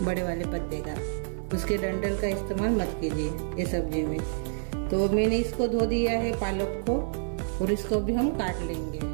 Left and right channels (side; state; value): left; silent; digital silence